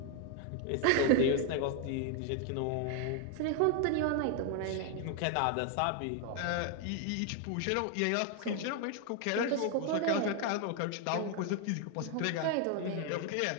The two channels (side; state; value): both; different; correlation 0.00